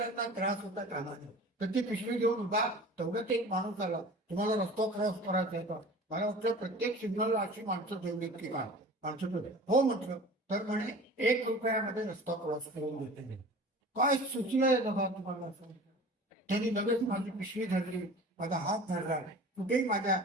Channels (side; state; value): both; normal; correlation 0.40